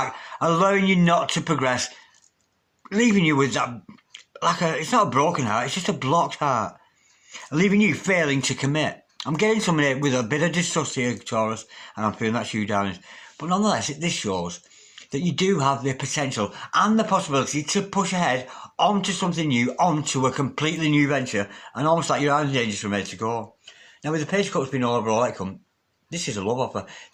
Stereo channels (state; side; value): identical; both; correlation 1.00